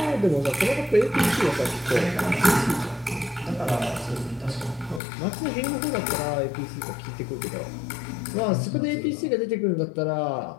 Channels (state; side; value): drops out; right; at 5.0 s